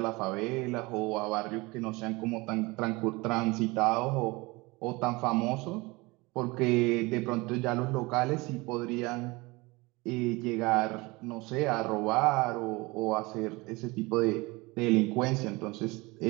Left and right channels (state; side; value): quieter; left; 23.7 dB